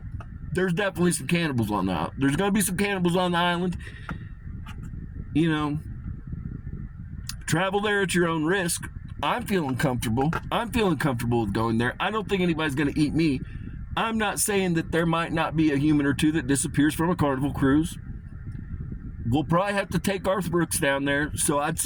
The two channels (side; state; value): both; identical; correlation 1.00